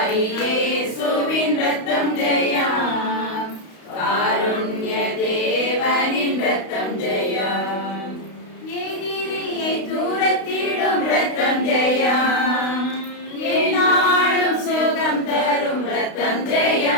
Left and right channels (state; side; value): late; right; 32 ms